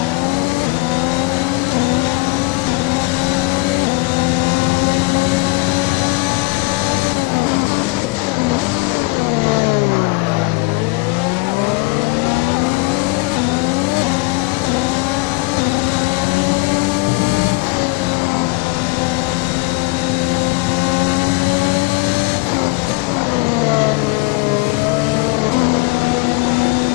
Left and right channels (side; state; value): right; quieter; 23.7 dB